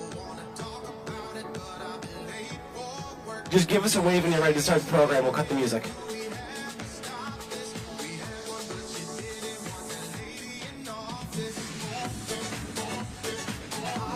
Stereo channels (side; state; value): both; identical; correlation 1.00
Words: Just give us a wave when you're ready to start the program. We'll cut the music.